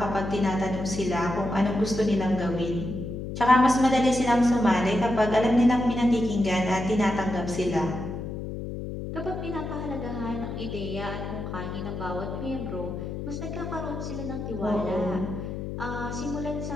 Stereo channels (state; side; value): noise; left; hum, 6 dB below the sound